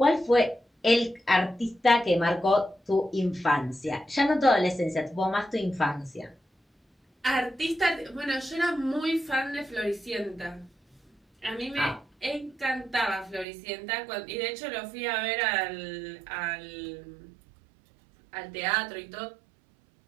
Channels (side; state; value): left; drops out; at 13.5 s